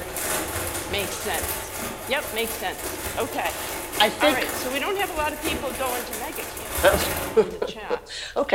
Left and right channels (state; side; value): identical; both; correlation 1.00